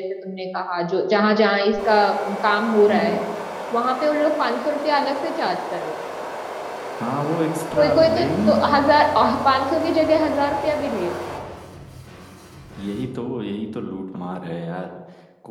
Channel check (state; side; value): identical; both; correlation 1.00